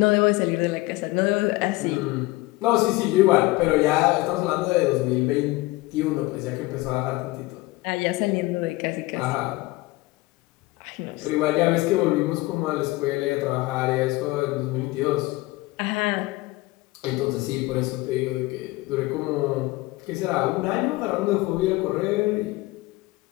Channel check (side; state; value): right; quieter; 20.5 dB